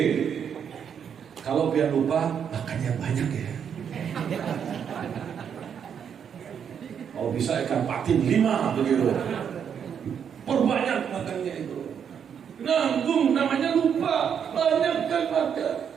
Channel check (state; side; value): quieter; left; 7.8 dB